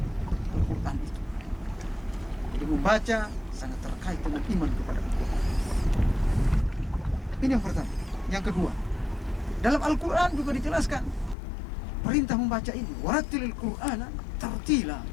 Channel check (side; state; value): right; drops out; at 11.4 s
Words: Al-Quran itu. Jadi membaca sangat terkait dengan iman kepada Al-Quran. Ini yang pertama. Yang kedua, dalam Al-Quran juga dijelaskan perintah membaca ini, warattilil Qur'ana tartila.